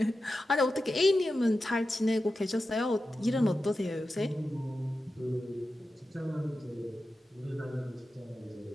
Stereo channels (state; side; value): normal; both; correlation 0.92